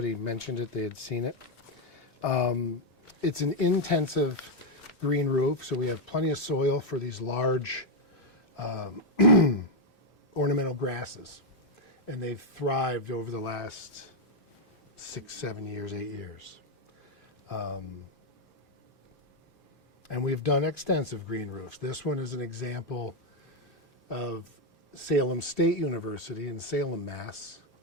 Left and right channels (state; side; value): normal; both; correlation 0.01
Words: mentioned it, they had seen it. It's an intensive green roof, so we have plenty of soil for these large ornamental grasses. And they've thrived over the last 6, 7 years, 8 years. And we've done extensive green roofs. This one is an example of Salem State University in Salem, Mass.,